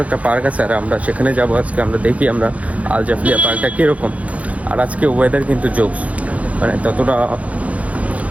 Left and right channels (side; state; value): left; late; 0.067 ms